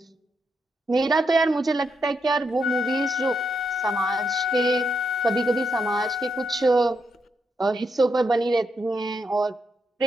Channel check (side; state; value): both; normal; correlation 0.80